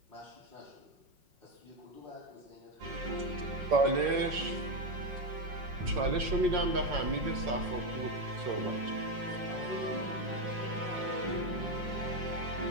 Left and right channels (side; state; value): left; late; 5.5 ms